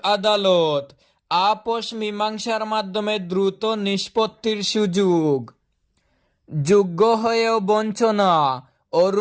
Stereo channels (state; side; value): identical; both; correlation 1.00